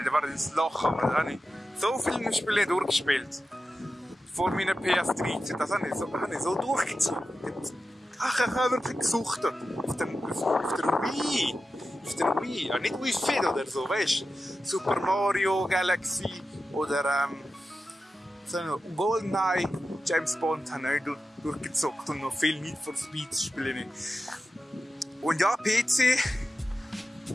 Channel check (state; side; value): normal; both; correlation 0.92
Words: da war das Loch, aber da habe ich so viele Spiele durchgespielt. Vor meiner PS13, das habe ich so durchgezogen. Ach, ich habe wirklich gesuchtet. Auf der Wii. Auf der Wii. Ja, nicht Wii Fit oder so, weißt du? Super Mario Galaxy oder GoldenEye, James Bond habe ich durchgezockt und noch viel Need for Speed spiele ich. Und ja, PC.